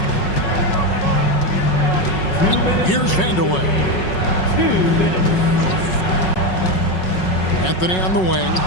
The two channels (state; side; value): late; right; 5.4 ms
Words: Here's Vanderwood. Anthony on the wing,